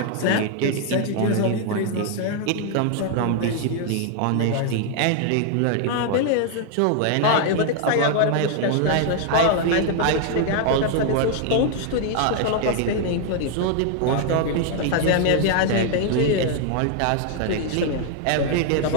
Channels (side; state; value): both; different; correlation 0.00